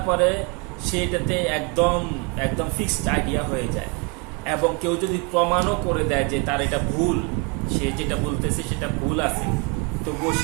পরে সেটাতে একদম ফিক্সড আইডিয়া হয়ে যায় এবং কেউ যদি প্রমাণও করে দেয় যে তার এটা ভুল, সে যেটা বলতেছে সেটা ভুল আছে, তবুও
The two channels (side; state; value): left; quieter; 31.5 dB